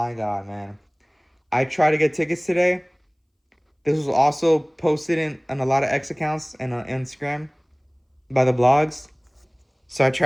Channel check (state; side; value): identical; both; correlation 1.00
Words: God, man. I tried to get tickets today. This was also posted in a lot of X accounts and on Instagram by the blogs. So I